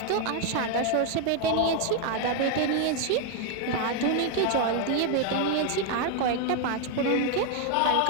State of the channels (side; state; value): both; different; correlation 0.01